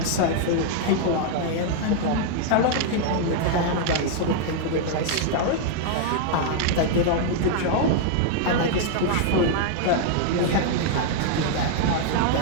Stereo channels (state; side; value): different; both; correlation 0.00